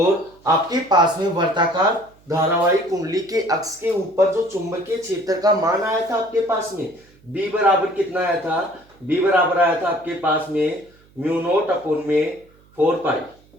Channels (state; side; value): noise; right; hum, 30 dB below the sound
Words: आपके पास में वर्ताकार धारावाहिक कुंडली के अक्ष के ऊपर जो चुंबकीय क्षेत्र का मान आया था आपके पास में बी बराबर कितना आया था, बी बराबर आया था आपके पास में म्यू नोट अपॉन में 4 पाई,